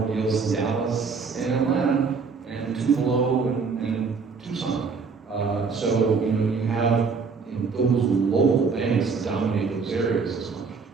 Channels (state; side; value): quieter; left; 5.1 dB